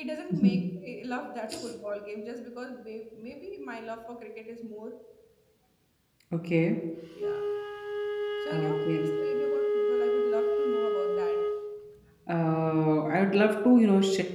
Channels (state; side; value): identical; both; correlation 1.00